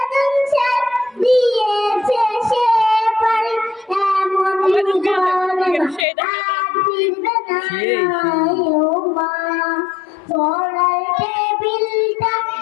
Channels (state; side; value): drops out; right; at 6.1 s